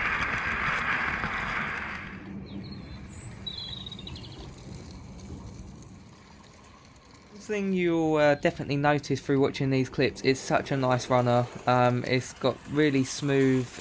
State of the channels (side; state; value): both; identical; correlation 1.00